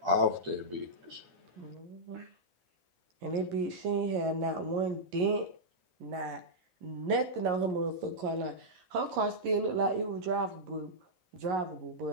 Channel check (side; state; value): left; late; 11 ms